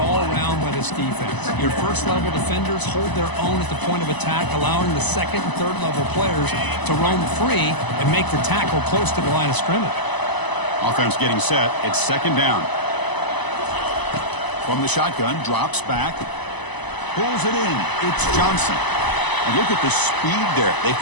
around by this defense. Your first-level defenders hold their own at the point of attack, allowing the second and third-level players to roam free and make the tackle close to the line of scrimmage. Offense getting set. It's second down. From the shotgun, drops back. Pulls it in. It's Johnson. And look at the speed there. They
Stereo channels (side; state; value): right; late; 1.0 ms